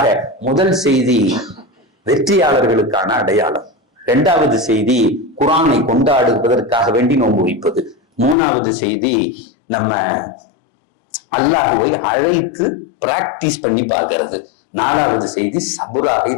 முதல் செய்தி வெற்றியாளர்களுக்கான அடையாளம். 2வது செய்தி குர்ஆனை கொண்டாடுவதற்காக வேண்டி நோன்பு வைப்பது. மூணாவது செய்தி, நம்ம அல்லாஹ்வை அழைத்து பிராக்டிஸ் பண்ணி பார்க்கிறது. நாலாவது செய்தி, சபுராக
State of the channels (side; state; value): right; drops out; at 8.3 s